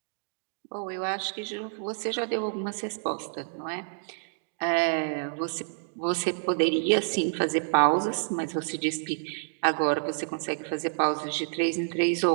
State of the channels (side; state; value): left; silent; digital silence